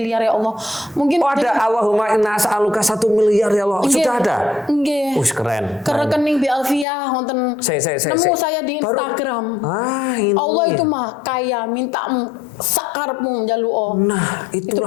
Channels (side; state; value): right; drops out; at 6.9 s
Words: ya Allah. Mungkin ada Allahumma inna as'aluka 1 miliar ya Allah. Sudah ada? Nggih. Keren. Ke rekening Bi Alfiah wonten. Nemu saya di Instagram. Ini. Allah itu mah kaya, minta sakarepmu njaluo. Nah, itulah